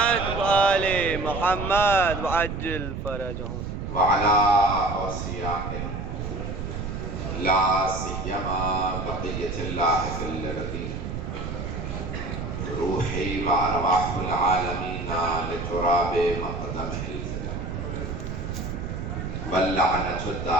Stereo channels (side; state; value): right; noise; rumble, 5 dB below the sound